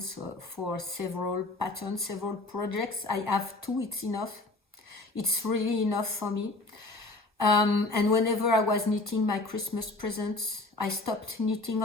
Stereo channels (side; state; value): right; quieter; 3.1 dB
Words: for several patterns, several projects. I have 2, it's enough. It's really enough for me. And whenever I was knitting my Christmas presents, I stopped knitting